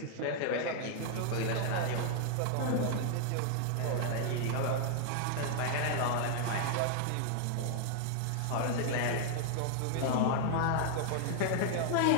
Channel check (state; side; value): different; both; correlation -0.01